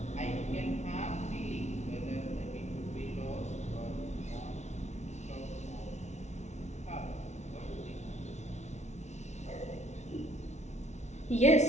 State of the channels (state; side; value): late; right; 0.32 ms